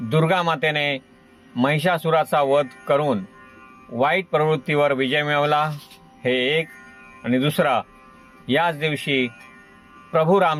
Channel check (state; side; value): identical; both; correlation 1.00